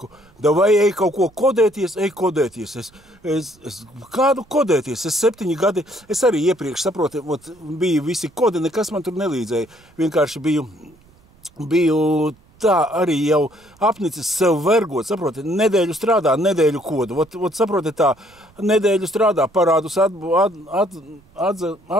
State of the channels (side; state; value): right; noise; rumble, 30 dB below the sound